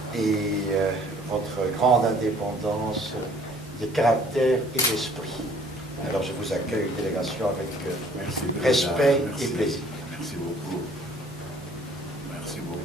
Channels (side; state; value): both; normal; correlation 0.57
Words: et votre grande indépendance de caractère et d'esprit. Alors, je vous accueille, délégation, avec respect et plaisir. Merci beaucoup. Merci